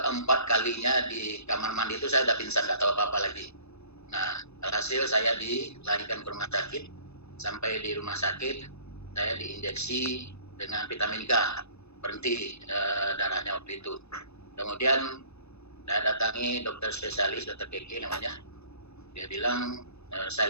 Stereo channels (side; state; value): right; late; 0.80 ms